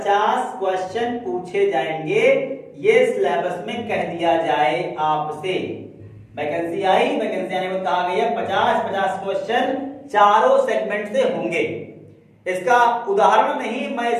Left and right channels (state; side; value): identical; both; correlation 1.00